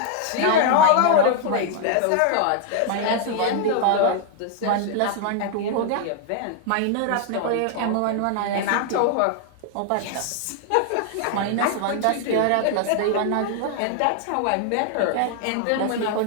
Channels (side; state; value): both; different; correlation 0.00